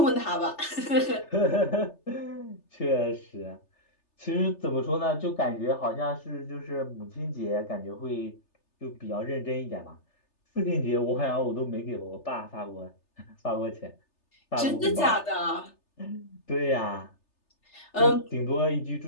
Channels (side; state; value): right; late; 3.3 ms